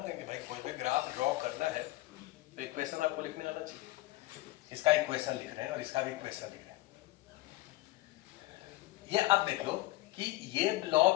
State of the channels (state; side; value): quieter; right; 18.1 dB